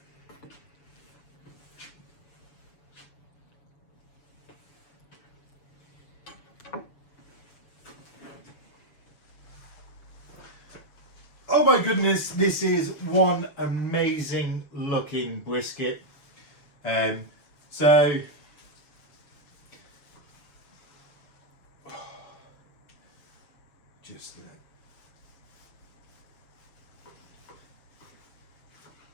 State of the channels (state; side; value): late; right; 6.8 ms